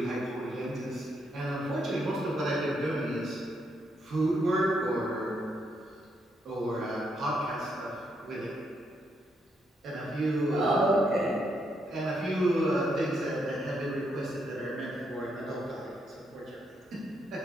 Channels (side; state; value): both; normal; correlation 0.77